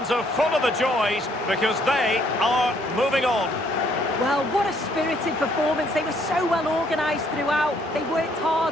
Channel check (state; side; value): normal; both; correlation 0.66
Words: are full of the joys because they are moving on. Well, what a spirited performance. They were so well organised throughout. They worked